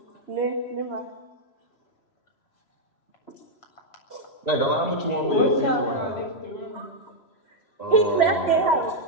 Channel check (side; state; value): right; late; 3.0 ms